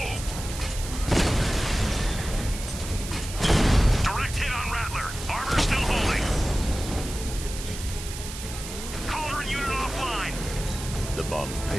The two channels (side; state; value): right; noise; hiss, 10 dB below the sound